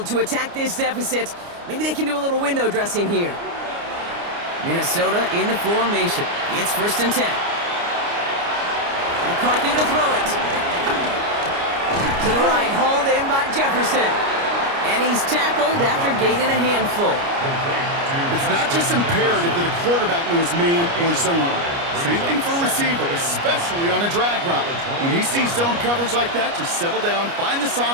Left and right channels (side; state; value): left; late; 29 ms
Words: to attack this deficit. Maybe they can do a little window dressing here. Minnesota in the formation. It's 1st and 10. McCarthy to throw it. To the right, hauled in by Jefferson. And he's tackled after gaining a handful. It's not just imperative that a quarterback knows man or zone. Same thing for a receiver, especially on a drag route. When he sees zone coverage like that, just settle down, find the